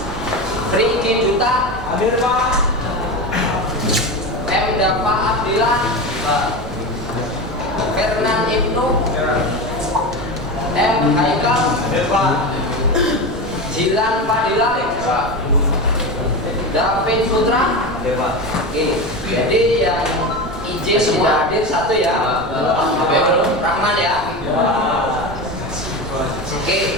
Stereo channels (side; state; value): right; noise; rumble, 12 dB below the sound